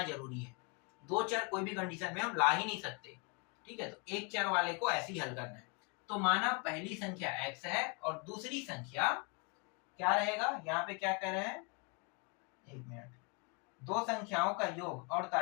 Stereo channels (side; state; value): right; quieter; 33.9 dB